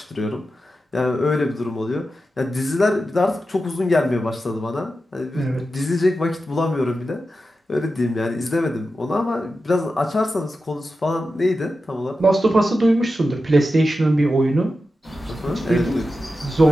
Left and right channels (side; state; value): both; normal; correlation 0.91